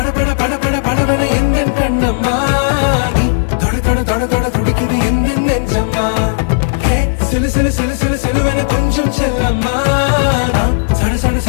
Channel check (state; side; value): silent; right; digital silence